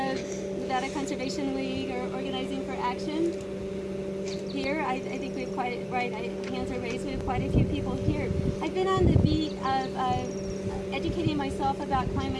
Nevada Conservation League, or Organizing for Action here, I think we have quite right. Hands are raised. We have quite a few people here. I've been on the beat of educating myself about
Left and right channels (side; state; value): both; identical; correlation 1.00